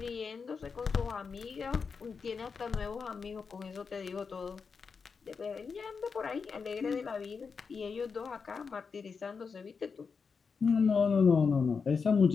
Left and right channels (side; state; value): right; quieter; 5.4 dB